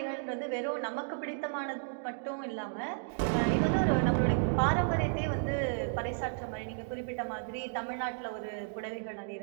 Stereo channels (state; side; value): silent; left; digital silence